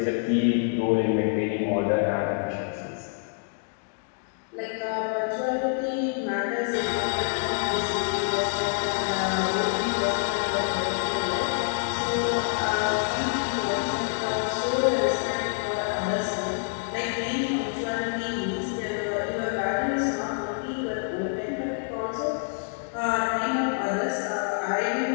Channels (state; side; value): silent; right; 60 dB below the other